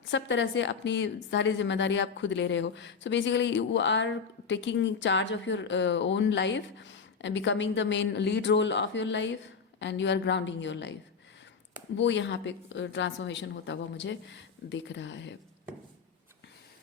तरह से अपनी सारी जिम्मेदारी आप खुद ले रहे हो। So basically you are taking charge of your own life and becoming the main lead role of your life and you are grounding your life। वो यहाँ पे ट्रांसफॉर्मेशन होता हुआ मुझे दिख रहा है।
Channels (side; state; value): right; quieter; 5.7 dB